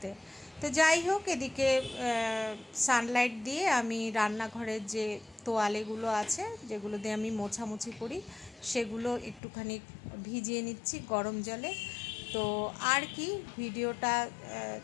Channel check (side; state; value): right; drops out; at 9.4 s